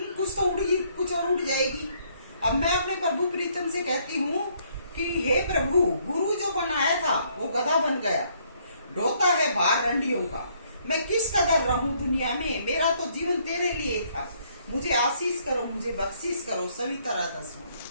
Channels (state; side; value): inverted; both; correlation -0.68